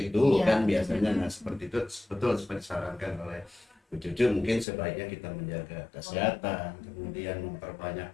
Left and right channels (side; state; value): right; drops out; at 4.7 s